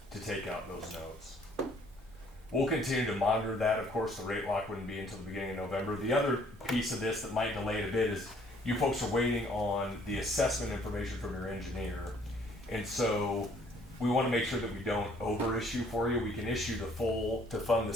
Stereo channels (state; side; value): normal; both; correlation 0.61